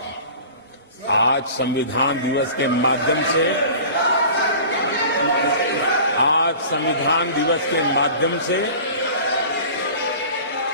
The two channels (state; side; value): inverted; both; correlation -0.40